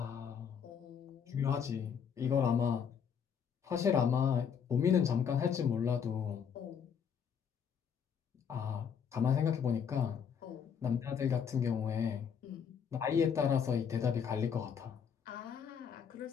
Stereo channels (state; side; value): quieter; right; 7.3 dB